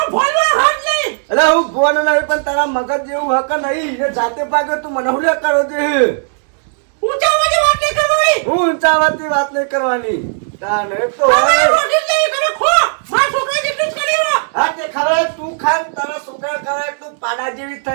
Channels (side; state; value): left; silent; digital silence